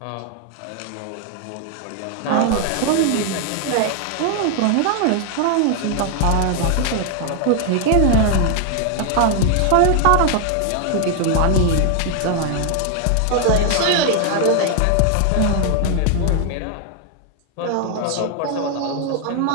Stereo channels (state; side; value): different; both; correlation 0.00